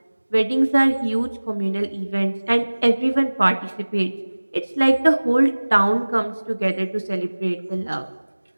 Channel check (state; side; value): inverted; both; correlation -1.00